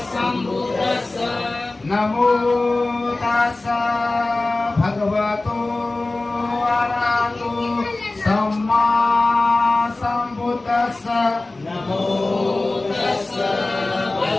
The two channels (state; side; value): quieter; right; 3.1 dB